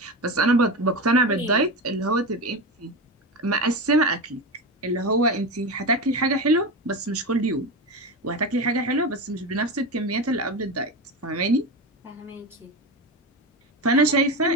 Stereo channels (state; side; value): normal; both; correlation 0.20